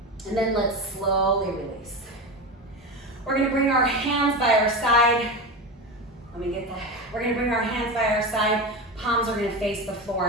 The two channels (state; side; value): normal; both; correlation 0.22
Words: And then let's slowly release. We're gonna bring our hands by our side. Let me get that. We're gonna bring our hands by our side. Palms are gonna face the